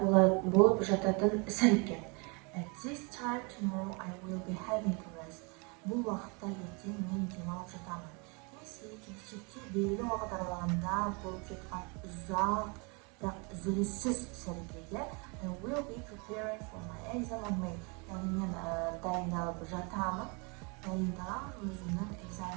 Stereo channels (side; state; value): left; quieter; 31.8 dB